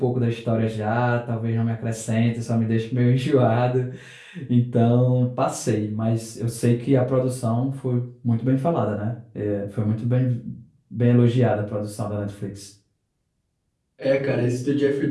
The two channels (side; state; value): both; identical; correlation 1.00